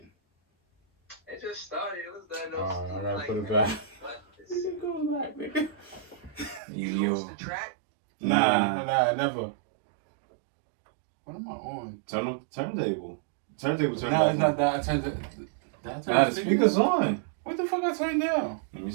It just started. It was done. Oh, I gotta put it back. Go back, nigga. You lost the track? Nah. Nah, never. What am I on? Turntable. No, it's not that. I turned it. Nah, the speaker's on. What the fuck I turned down? Let me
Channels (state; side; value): drops out; left; at 6.6 s